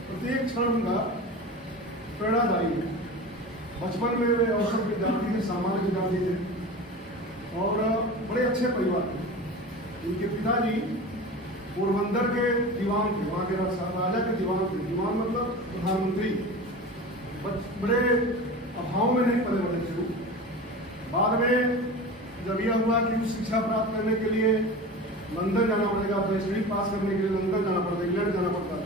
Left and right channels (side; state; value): both; normal; correlation 0.32